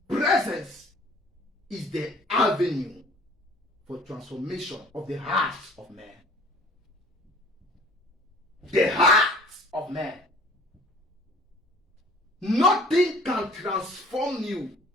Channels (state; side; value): normal; both; correlation 0.52